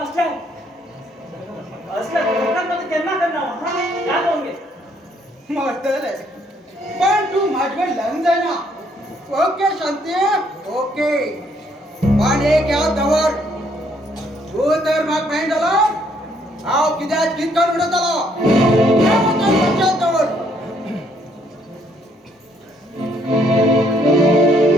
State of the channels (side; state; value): both; normal; correlation 0.68